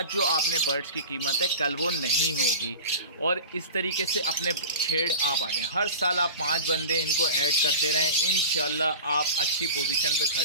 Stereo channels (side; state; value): both; inverted; correlation -0.33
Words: जो आपने बर्ड्स की कीमत है कल वो नहीं होगी। और इस तरीके से अपने छेड़ आप आ जाएँ। हर साल आप 5 बंदे इनको ऐड करते रहें, इंशाल्लाह आप अच्छी पोजीशन पे